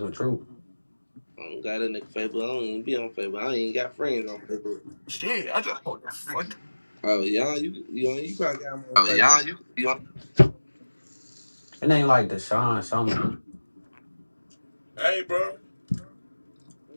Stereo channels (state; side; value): inverted; both; correlation -1.00